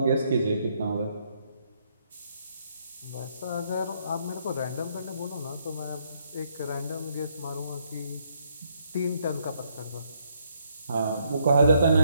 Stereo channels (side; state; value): both; inverted; correlation -0.72